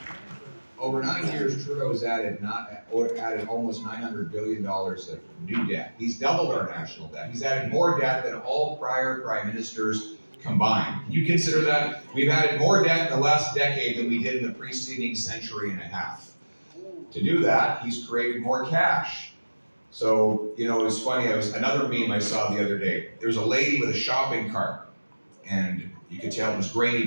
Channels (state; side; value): inverted; both; correlation -1.00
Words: over 9 years, Trudeau's added almost $900 billion of new debt. He's doubled our national debt. He's added more debt than all prior prime ministers combined. Can you consider that? We've added more debt in the last decade than we did in the preceding century and a half. To do that, he's created more cash. So, it was funny. Another meme I saw the other day. There was a lady with a shopping cart, and you could tell it was grainy